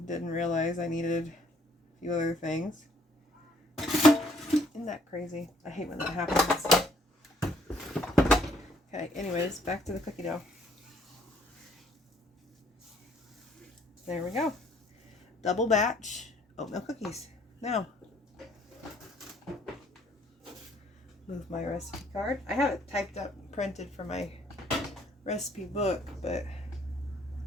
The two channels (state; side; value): normal; both; correlation 0.64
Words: didn't realize I needed a few other things. Isn't that crazy? I hate when that happens. Okay, anyways, back to the cookie dough. There we go. Double batch oatmeal cookies. Now, move my recipe card. I have it typed up and printed for my recipe book, but